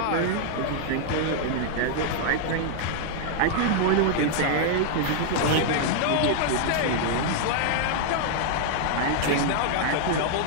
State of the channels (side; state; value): both; different; correlation -0.01